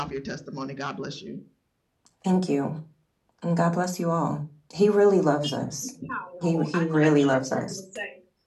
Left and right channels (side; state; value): both; identical; correlation 1.00